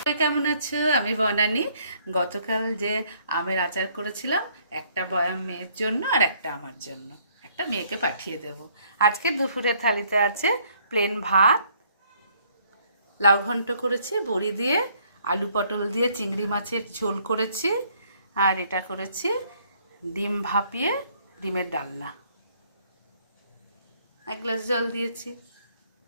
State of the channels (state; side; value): inverted; both; correlation -0.65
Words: কেমন আছো? আমি বনানী। গতকাল যে আমের আচার করেছিলাম, একটা বয়াম মেয়ের জন্য আর একটা আমার জন্য, একটা মেয়েকে পাঠিয়ে দেব। আজকে দুপুরের থালিতে আছে প্লেন ভাত, লাউ ঘন্ট করেছি বড়ি দিয়ে, আলু পটল দিয়ে চিংড়ি মাছের ঝোল করেছি, আর এটা করেছি ডিম ভাপিয়ে ডিমের ডালনা। এক গ্লাস জল দিয়েছি।